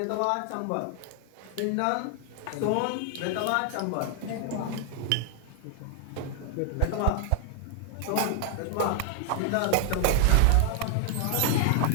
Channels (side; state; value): both; different; correlation 0.00